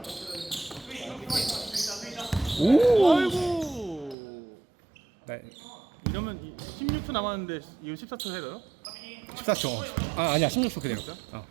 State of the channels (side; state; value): left; drops out; at 4.2 s